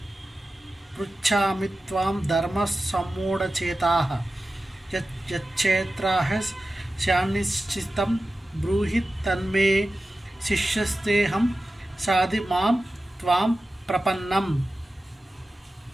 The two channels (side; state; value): both; normal; correlation 0.94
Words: పృచ్ఛామి త్వాం ధర్మ సమ్మూఢచేతాః యచ్చేత్రాః శాన్నిశ్చితం బ్రూహి తన్మే శిష్యస్తేహం సాధి మాం త్వాం ప్రపన్నం.